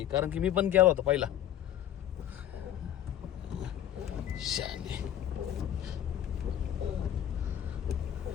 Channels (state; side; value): quieter; right; 11.2 dB